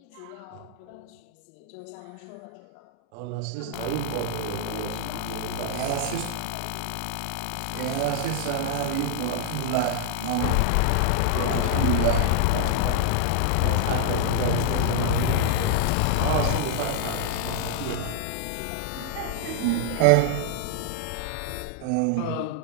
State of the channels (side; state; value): both; different; correlation -0.01